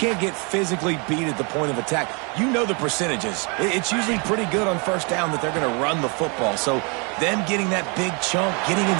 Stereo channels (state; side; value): quieter; left; 33.1 dB